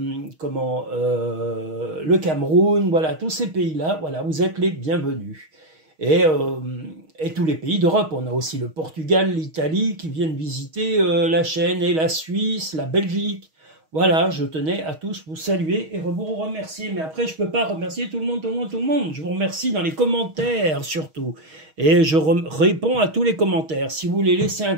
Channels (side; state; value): left; late; 6.4 ms